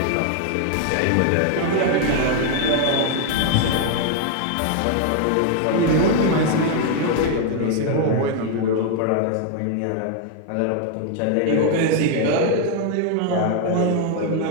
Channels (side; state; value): both; different; correlation 0.00